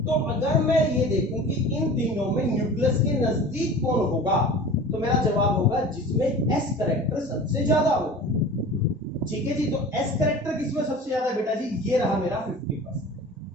तो अगर मैं ये देखूं कि इन तीनों में न्यूक्लियस के नजदीक कौन होगा, तो मेरा जवाब होगा जिसमें s कैरेक्टर सबसे ज्यादा होगा। ठीक है जी, तो s कैरेक्टर किसमें सबसे ज्यादा है बेटा जी? ये रहा मेरा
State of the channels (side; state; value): both; normal; correlation 0.38